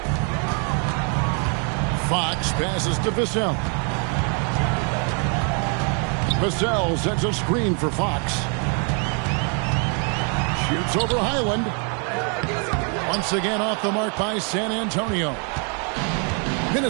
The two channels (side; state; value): left; quieter; 39.0 dB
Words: Fox passes to Vassell. Vassell sets a screen for Fox. Shoots over Highland. Once again off the mark by San Antonio.